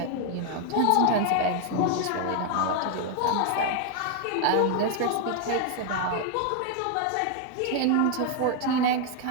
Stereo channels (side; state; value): both; different; correlation 0.00